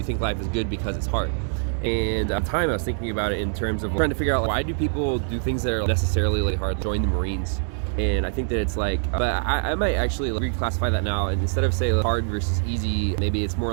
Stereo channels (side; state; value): left; silent; 62 dB below the other